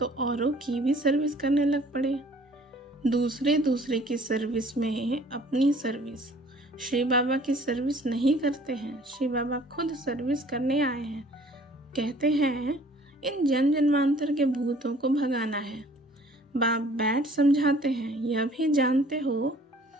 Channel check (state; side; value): normal; both; correlation 0.54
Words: औरों की भी सर्विस करने लग पड़े। दूसरे की सर्विस में अपनी सर्विस। श्री बाबा की सर्विस नहीं करते हैं, श्री बाबा खुद सर्विस करने आए हैं। कहते हैं इन जन जन्मांतर के भूतों को भगाना है। बाप बैठ समझाते हैं, यह भी जानते हो